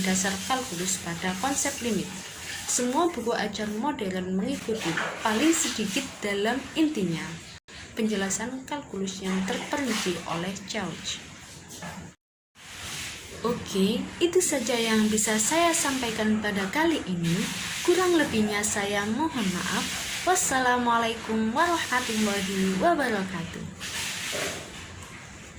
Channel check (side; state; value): both; identical; correlation 1.00